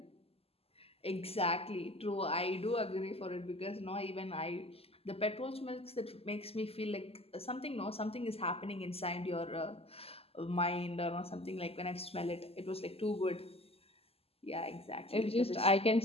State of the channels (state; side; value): late; right; 0.29 ms